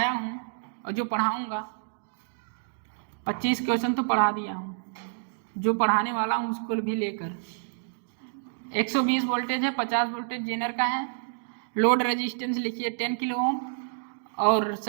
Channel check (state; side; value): silent; left; digital silence